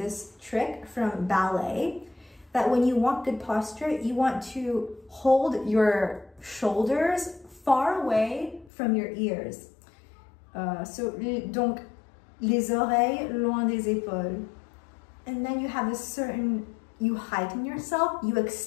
trick from ballet, that when you want good posture, you want to hold your shoulders far away from your ears. Donc, les oreilles loin des épaules. And then you have a certain, you heighten yourself, you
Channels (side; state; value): right; drops out; at 8.7 s